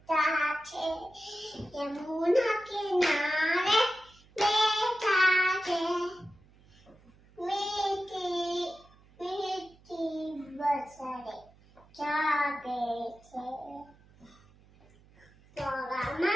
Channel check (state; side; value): noise; right; hum, 28 dB below the sound